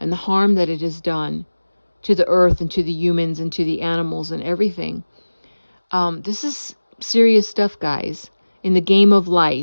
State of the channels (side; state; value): both; inverted; correlation -1.00